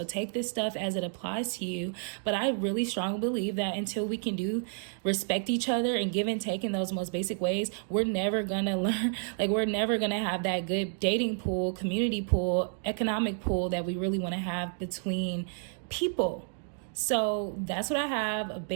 take this stuff as it applies to you. But I really strongly believe that until we can respect each other and give and take in those most basic ways, we're never gonna learn, like we're never gonna have that good dating pool, community pool, economic pool that we really want to have between people. So that's what I have: a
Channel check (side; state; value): left; silent; 58 dB below the other